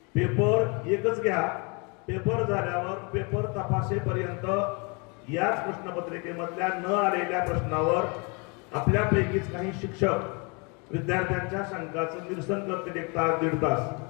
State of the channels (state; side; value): quieter; right; 31.9 dB